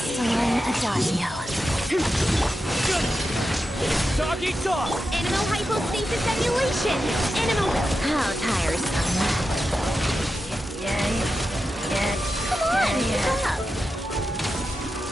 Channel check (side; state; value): both; normal; correlation 0.90